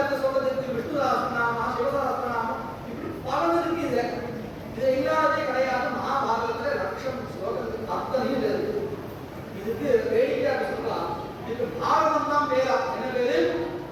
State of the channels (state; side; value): identical; both; correlation 1.00